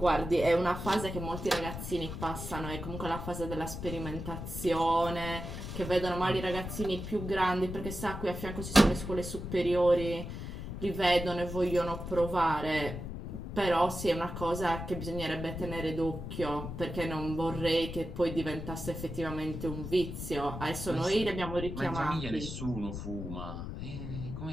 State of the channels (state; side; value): noise; left; rumble, 7 dB below the sound